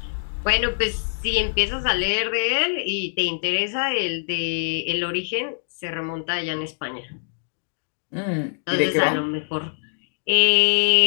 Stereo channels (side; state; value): right; silent; digital silence